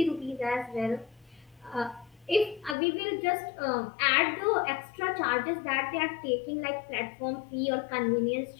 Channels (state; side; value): drops out; right; at 2.8 s